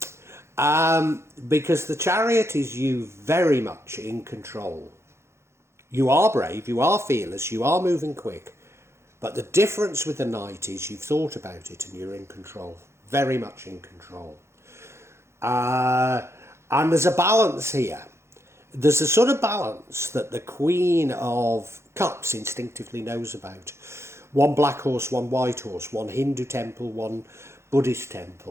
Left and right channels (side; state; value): left; late; 0.13 ms